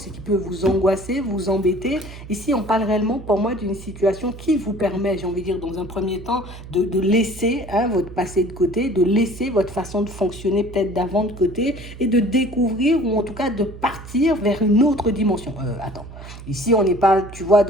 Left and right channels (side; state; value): right; noise; hum, 14 dB below the sound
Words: et qui peut vous angoisser, vous embêter. Ici, on parle réellement pour moi d'une situation qui vous permet, j'ai envie de dire, dans un premier temps, de laisser votre passé de côté, de laisser votre façon de fonctionner peut-être d'avant de côté et de découvrir ou en tout cas de partir vers une autre dimension. Attends, ici, on n'est pas, tu vois,